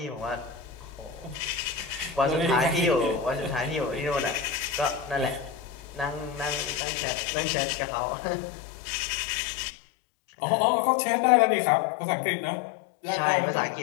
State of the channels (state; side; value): drops out; right; at 6.8 s